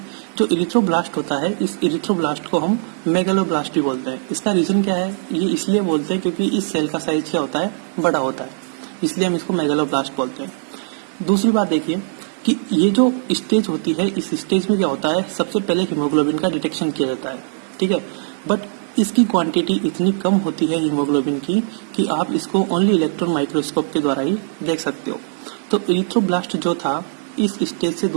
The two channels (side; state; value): left; silent; 66 dB below the other